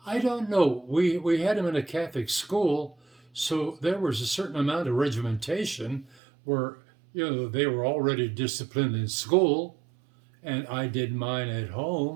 I don't know. We had him in a Catholic school, so there was a certain amount of regimentation where they were already disciplined in school, and I did mine at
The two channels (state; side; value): drops out; left; at 6.2 s